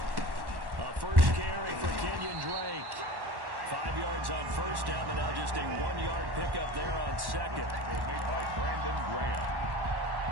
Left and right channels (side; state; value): left; late; 1.1 ms